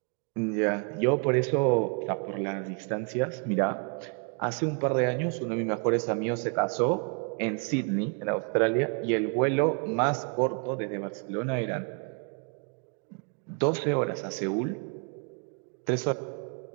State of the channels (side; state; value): left; quieter; 39.0 dB